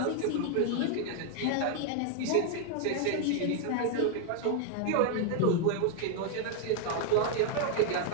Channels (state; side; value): different; both; correlation 0.00